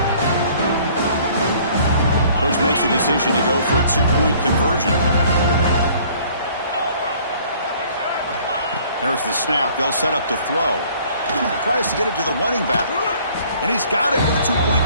Coach makes the decision to go for a two-point conversion. There's the snap. They'll set up to throw. Tries to get it to the running back. And he's got it with a two-point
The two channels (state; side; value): inverted; both; correlation -0.56